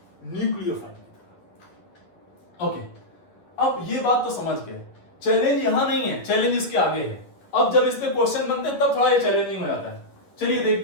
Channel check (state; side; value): late; right; 11 ms